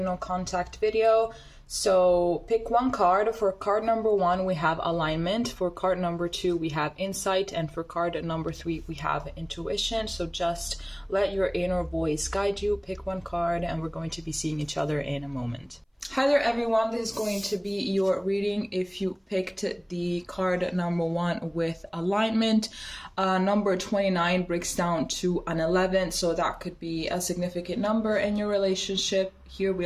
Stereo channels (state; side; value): identical; both; correlation 1.00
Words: contact video. So pick one card. For card number 1 we have alignment, for card number 2 we have insight, and for card number 3 we have intuition. So just let your inner voice guide you. Pick one card and we're going to be seeing each other in a moment. Hi there everyone, this is going to be your reading if you picked the card number 1 with alignment. Number 29 breaks down to an 11, so that could be a significant number in your relationship. Here we